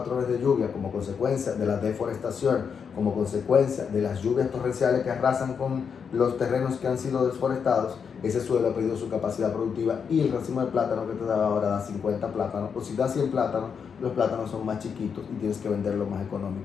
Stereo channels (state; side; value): quieter; right; 6.6 dB